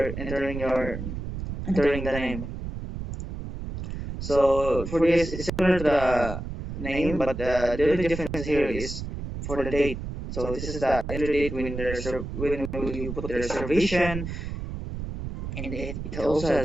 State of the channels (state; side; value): noise; right; rumble, 7 dB below the sound